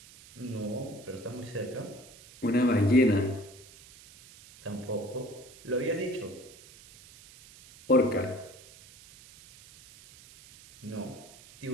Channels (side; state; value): right; noise; hiss, 21 dB below the sound